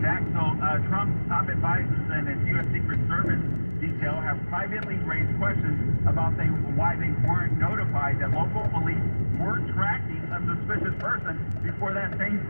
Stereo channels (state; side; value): inverted; both; correlation -1.00